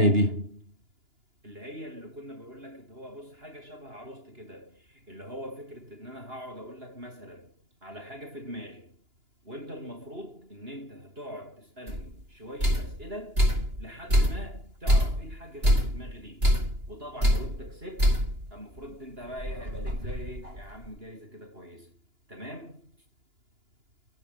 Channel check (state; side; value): late; left; 2.9 ms